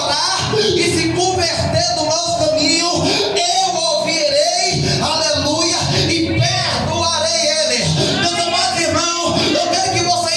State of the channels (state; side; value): identical; both; correlation 1.00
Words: e se converter do mau caminho, eu ouvirei, aleluia, e perdoarei ele. Meus amados irmãos, eu quero que